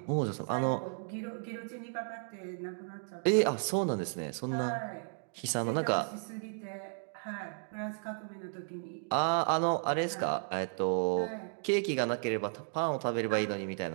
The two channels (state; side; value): silent; left; 55 dB below the other